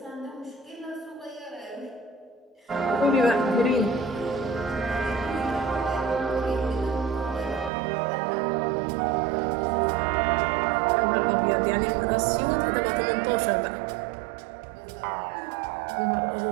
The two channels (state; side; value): drops out; left; at 7.7 s